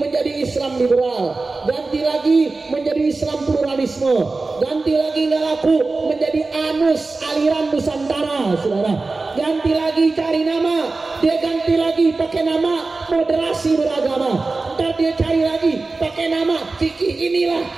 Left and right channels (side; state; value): left; quieter; 3.6 dB